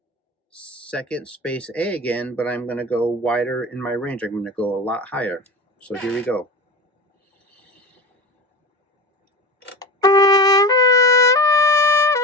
second space A again, but I'm going to go wider in my range. I'm going to go a lot higher. So here we go.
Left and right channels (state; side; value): normal; both; correlation 0.28